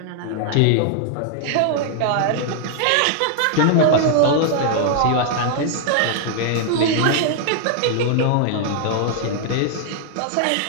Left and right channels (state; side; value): different; both; correlation 0.00